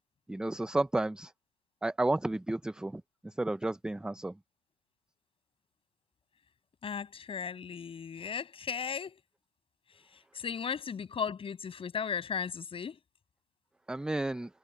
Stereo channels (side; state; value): both; normal; correlation 0.64